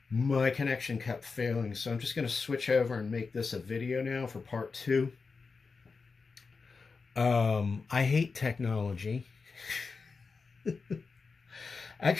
my connection kept failing. So I'm just going to switch over and make this a video now for part two. I hate technology.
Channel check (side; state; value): right; quieter; 4.6 dB